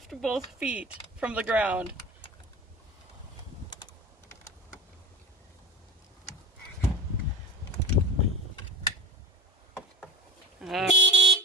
both feet from the ground.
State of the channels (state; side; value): normal; both; correlation 0.36